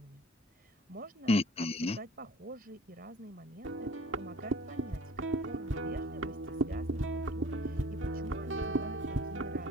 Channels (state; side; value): normal; both; correlation 0.47